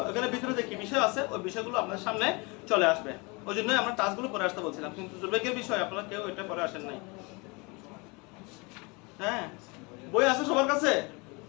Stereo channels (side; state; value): right; quieter; 28.2 dB